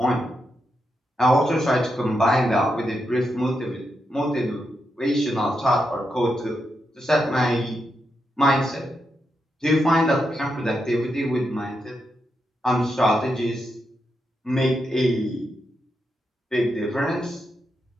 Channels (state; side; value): normal; both; correlation 0.85